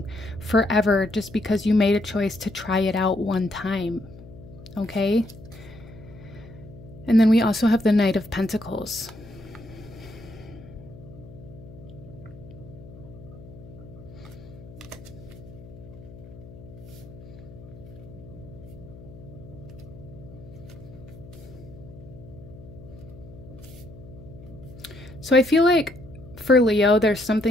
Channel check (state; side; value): noise; left; hum, 17 dB below the sound